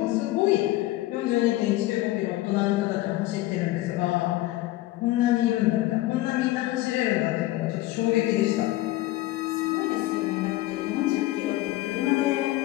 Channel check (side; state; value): right; quieter; 16.9 dB